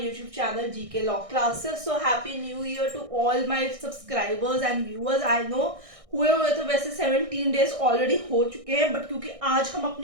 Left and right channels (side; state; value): left; late; 1.6 ms